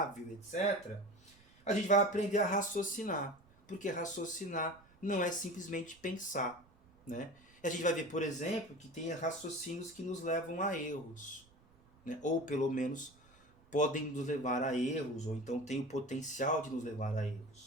etc., a gente vai aprender a raciocinar, porque raciocinar não é simplesmente pensar, né? E a gente vai ver, por exemplo, que tem raciocínios que nos levam a erros, né? Ou pelo menos podem nos levar a erros, ou então tem o potencial de nos levar a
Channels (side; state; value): right; noise; rumble, 28 dB below the sound